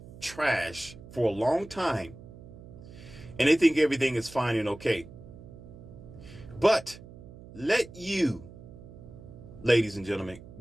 trash for a long time and they think everything is fine and okay. But let you, ladies and gentlemen,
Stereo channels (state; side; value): noise; right; hum, 17 dB below the sound